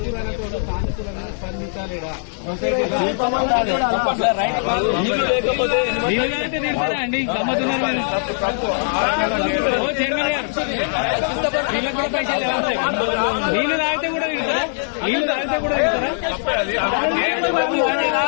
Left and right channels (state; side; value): silent; right; digital silence